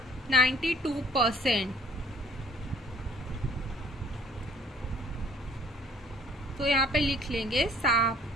92%. तो यहाँ पे लिख लेंगे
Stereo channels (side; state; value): both; normal; correlation 0.56